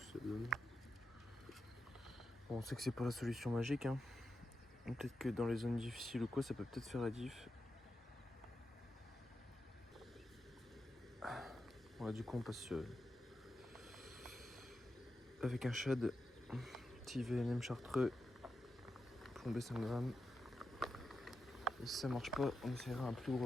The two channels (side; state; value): both; normal; correlation 0.89